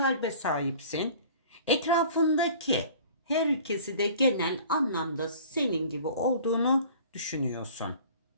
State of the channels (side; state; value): both; inverted; correlation -0.47